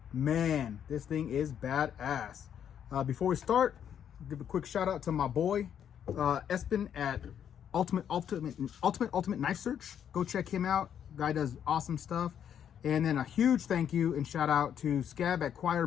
Man, this thing is badass. Before we start, give a quick shout out to my boy Espen at Ultimate Knife Search. Go check him out. Guy does awesome stuff. And then a huge thank you and shout out to Scab at Choir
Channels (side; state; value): right; quieter; 9.0 dB